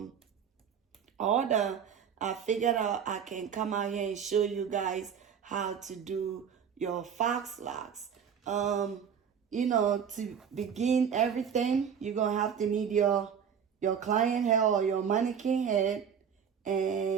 order, I figured out I can come out here and show you guys how to do your fox locks. To begin everything, you're gonna have to need your client hair or your mannequin head,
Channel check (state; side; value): quieter; left; 7.5 dB